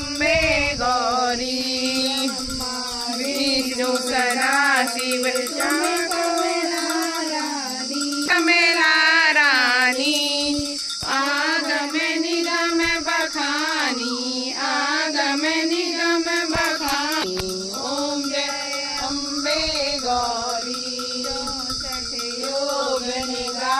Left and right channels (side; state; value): both; identical; correlation 1.00